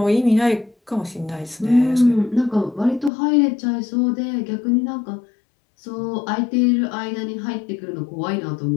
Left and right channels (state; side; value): drops out; right; at 3.1 s